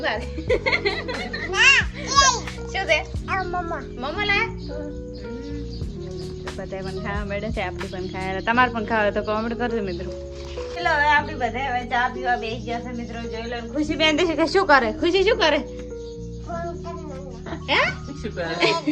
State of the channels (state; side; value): identical; both; correlation 1.00